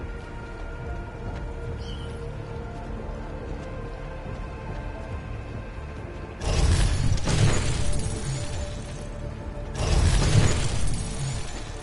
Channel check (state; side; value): identical; both; correlation 1.00